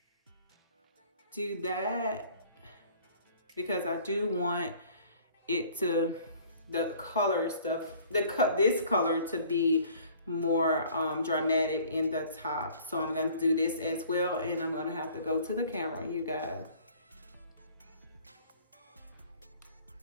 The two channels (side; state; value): both; inverted; correlation -0.53